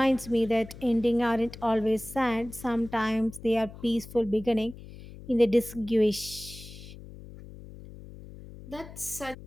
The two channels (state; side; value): noise; left; hum, 16 dB below the sound